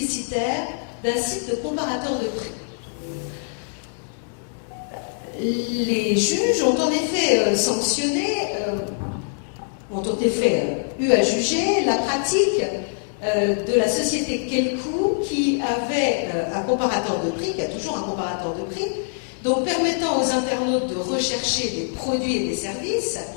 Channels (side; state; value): right; silent; 63 dB below the other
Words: d'un site de comparateur de prix. Les juges ont en effet sanctionné, ont en effet eu à juger la pratique de la société Kelkoo qui avait un comparateur de prix, qui a toujours un comparateur de prix, donc permettant aux internautes de rechercher des produits et des services,